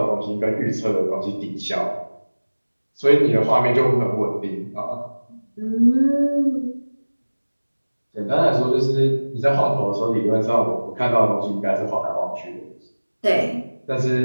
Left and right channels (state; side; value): inverted; both; correlation -1.00